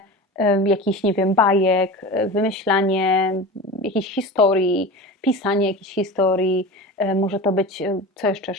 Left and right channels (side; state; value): both; normal; correlation 0.30